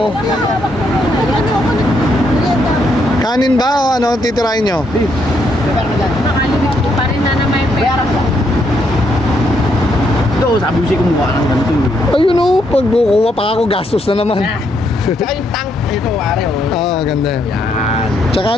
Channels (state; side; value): normal; both; correlation 0.75